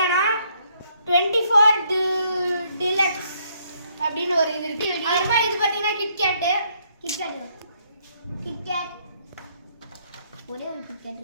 24 டிலக்ஸ் அப்படின்னு ஒரு இது இருக்கு. அப்புறமா இது பார்த்தீங்கன்னா கிட்கேட் ஒரே ஒரு கிட்கேட்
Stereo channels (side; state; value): both; inverted; correlation -0.69